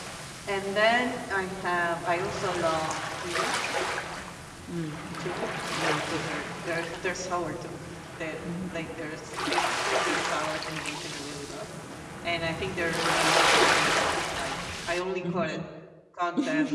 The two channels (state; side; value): identical; both; correlation 1.00